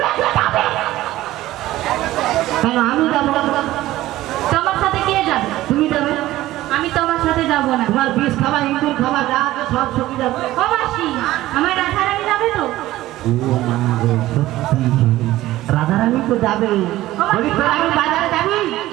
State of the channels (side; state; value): left; quieter; 15.9 dB